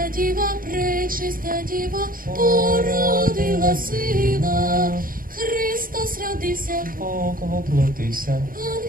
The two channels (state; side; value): late; left; 0.41 ms